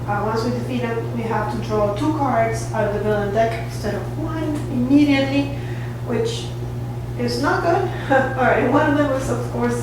once we defeat them, we have to draw 2 cards out of the villain deck instead of 1 immediately, which is not good. Alright, one of them was of course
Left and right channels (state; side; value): identical; both; correlation 1.00